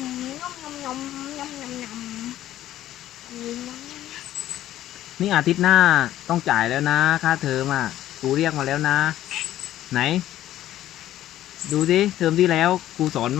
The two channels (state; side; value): quieter; right; 13.2 dB